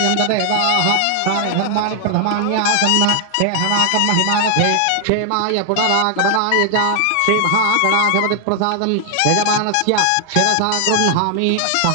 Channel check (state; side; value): different; both; correlation 0.00